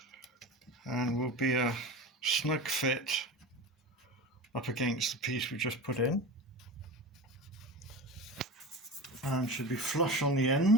And will be a snug fit up against the piece we just put in. And should be flush on the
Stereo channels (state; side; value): normal; both; correlation 0.29